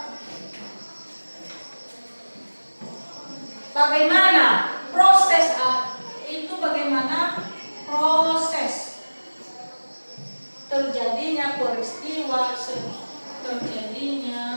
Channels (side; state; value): both; inverted; correlation -1.00